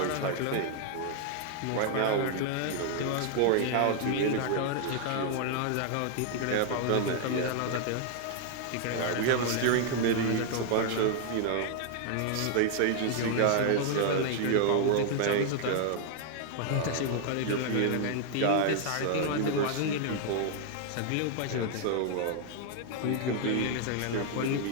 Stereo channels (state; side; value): different; both; correlation 0.00